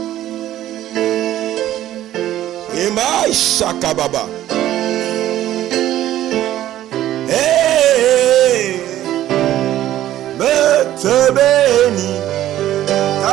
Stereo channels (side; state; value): left; quieter; 13.2 dB